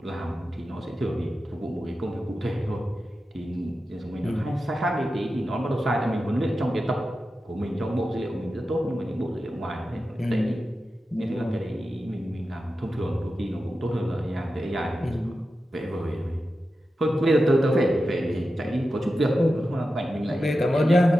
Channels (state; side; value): normal; both; correlation 0.92